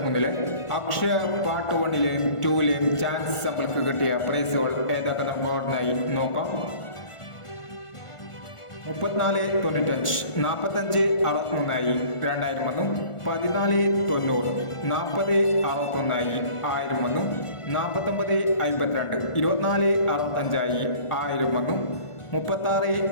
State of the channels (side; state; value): right; late; 1.5 ms